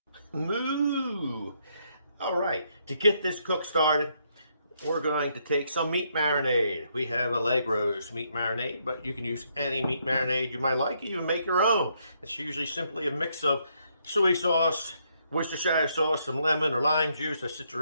Moo! Alright, to get this cook started, we're going to take some meat marinade. We have a leg roast meat marinade, but you can use any meat marinade you might like. You can make your own. It's usually simply a mix of soy sauce, Worcestershire sauce, some lemon or lime juice, a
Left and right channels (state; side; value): inverted; both; correlation -0.74